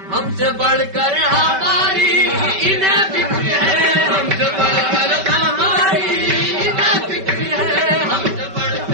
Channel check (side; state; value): left; late; 5.2 ms